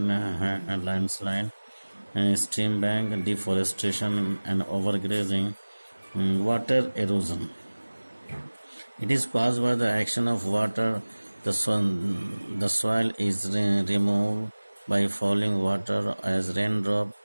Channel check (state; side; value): inverted; both; correlation -1.00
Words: landslide, stream bank, deforestation and overgrazing. Water erosion. It is caused by the action of water. The soil is removed by falling water as raindrop